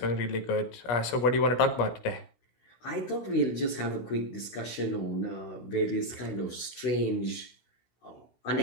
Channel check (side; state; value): right; late; 16 ms